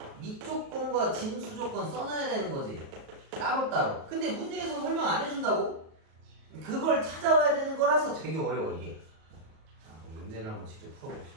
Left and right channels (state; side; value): late; left; 37 ms